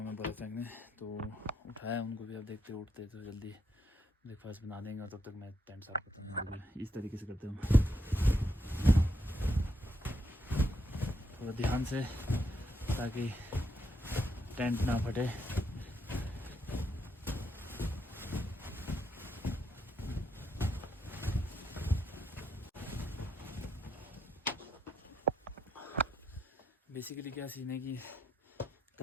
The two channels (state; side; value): normal; both; correlation 0.78